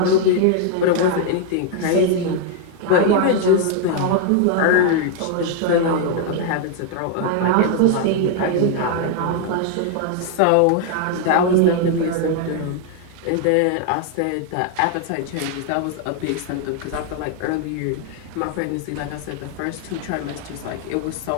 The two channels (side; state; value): both; different; correlation 0.00